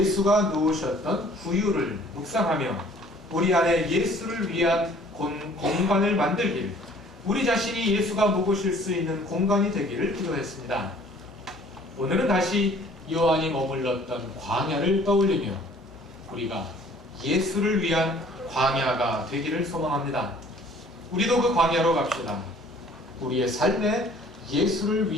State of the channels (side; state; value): both; normal; correlation 0.54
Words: 누우셨던 구유를 묵상하며 우리 안에 예수를 위한 공간을 만들길, 우리 자신이 예수가 묵으실 수 있는 공간이 되기를 기도했습니다. 오늘은 다시 요한이 머물렀던 광야를 떠올리며 우리가 예수를 위한 광야가 되기를 소망합니다. 우리도 그 광야로 갑시다. 우리의 삶에 예수를